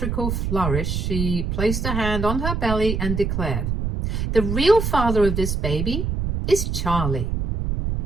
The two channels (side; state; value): right; noise; rumble, 1 dB below the sound